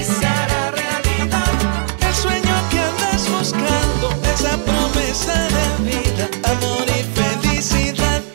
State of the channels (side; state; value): left; silent; 63 dB below the other